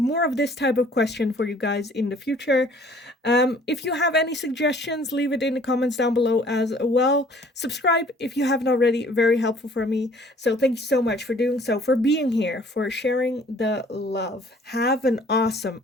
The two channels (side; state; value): both; normal; correlation 0.55